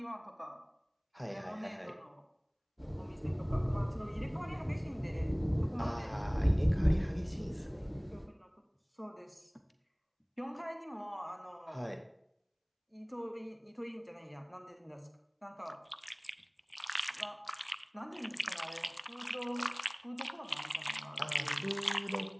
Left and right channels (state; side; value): identical; both; correlation 1.00